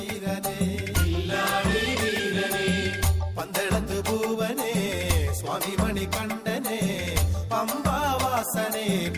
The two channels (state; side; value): identical; both; correlation 1.00